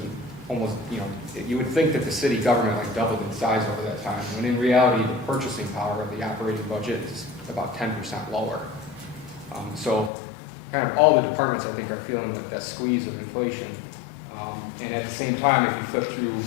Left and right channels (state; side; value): drops out; right; at 10.1 s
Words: almost, you would think that the city government like doubled in size over that time, when in reality, the purchasing power of the operating budget is about 10% lower. So kind of all the departments, I think, are feeling that squeeze of inflation. And at the same time, if you flip through